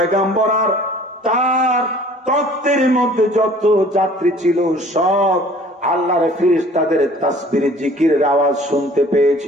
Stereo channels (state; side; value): normal; both; correlation 0.51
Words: আর তার তত্ত্বের মধ্যে যত যাত্রী ছিল সব আল্লাহর ফেরেশতাদের তাসবিহ জিকিরের আওয়াজ শুনতে